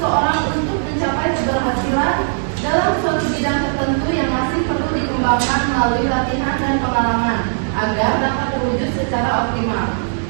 untuk mencapai keberhasilan dalam suatu bidang tertentu yang masih perlu dikembangkan melalui latihan dan pengalaman agar dapat terwujud secara optimal.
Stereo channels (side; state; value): left; silent; digital silence